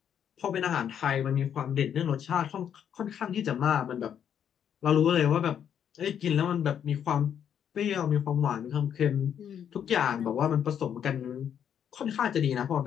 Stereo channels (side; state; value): right; quieter; 8.8 dB